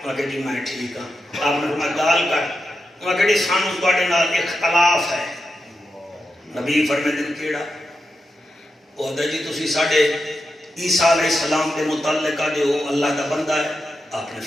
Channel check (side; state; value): both; normal; correlation 0.88